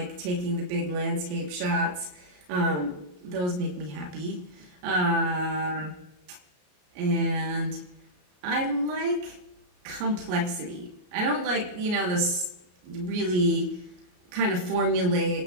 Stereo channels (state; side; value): late; left; 33 ms